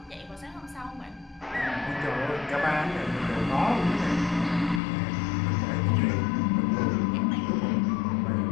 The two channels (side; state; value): right; drops out; at 4.8 s